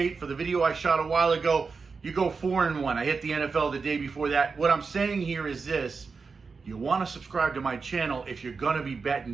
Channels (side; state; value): left; quieter; 4.8 dB